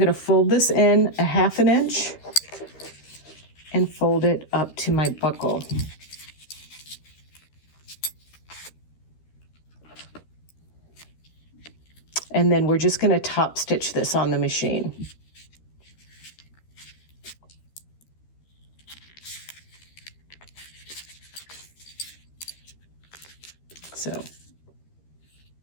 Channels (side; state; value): right; late; 13 ms